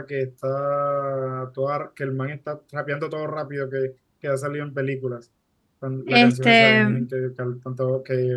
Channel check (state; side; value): identical; both; correlation 1.00